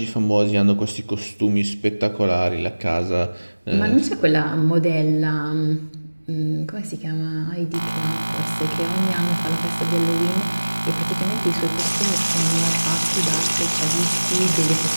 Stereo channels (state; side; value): inverted; both; correlation -1.00